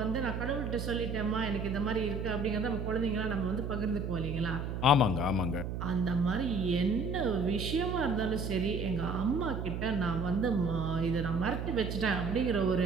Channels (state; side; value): noise; right; hum, 4 dB below the sound